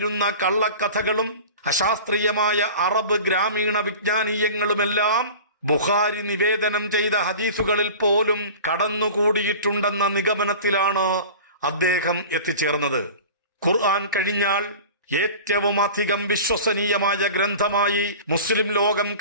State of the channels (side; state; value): both; inverted; correlation -0.37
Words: കള്ളക്കഥകളും അശാസ്ത്രീയമായ അറബ് ഗ്രാമീണ വിജ്ഞാനീയങ്ങളുമെല്ലാം ബുഖാരി നിവേദനം ചെയ്ത ഹദീസുകളിൽ പോലും കടന്നുകൂടിയിട്ടുണ്ടെന്ന നിഗമനത്തിലാണ് അദ്ദേഹം എത്തിച്ചേർന്നത്. ഖുർആൻ കഴിഞ്ഞാൽ ഏറ്റവും അധികം വിശ്വസനീയമായ ഗ്രന്ഥമായി മുസ്ലിം ലോകം